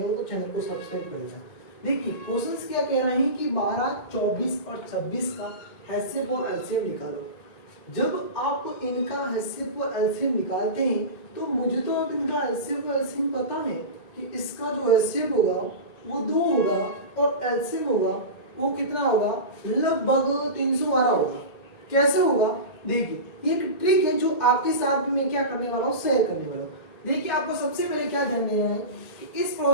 हो तो चैनल को सब्सक्राइब कर लेना। देखिए क्वेश्चंस क्या कह रहे हैं कि 12, 24 और 26 का HCF और LCM निकालो। जब आप इनका HCF और LCM निकालते हैं तो मुझे तो अब इनका HCF और LCM पता है कि इसका जो HCF होगा वो 2 होगा और LCM होगा वो कितना होगा, लगभग 312 होगा। कैसे होगा, देखिए एक ट्रिक है जो आपके साथ भी मैं क्या करने वाला हूँ, शेयर करने वाला हूँ। देखिए आपको सबसे पहले क्या ध्यान देना है कि इस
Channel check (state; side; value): late; right; 1.9 ms